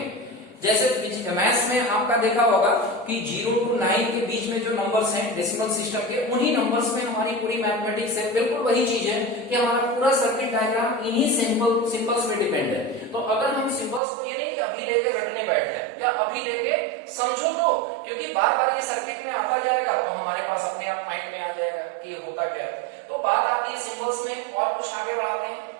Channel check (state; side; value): drops out; left; at 14.0 s